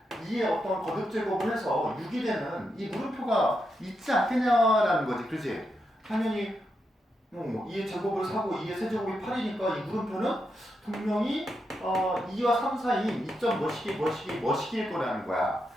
2의 어떤 거듭 제곱을 해서 6이 되는 이 물음표가 있지 않겠냐라는 거지, 그지? 당연히 2의 제곱을 사고 2의 세제곱이 8이니까 이 물음표는 분명히 2와 3 사이인 2점 뭐시기일 거라는 거야.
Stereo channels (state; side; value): normal; both; correlation 0.84